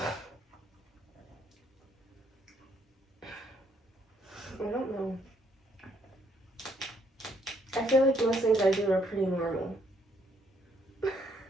I don't know. I feel like most things I do are pretty normal.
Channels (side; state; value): both; normal; correlation 0.70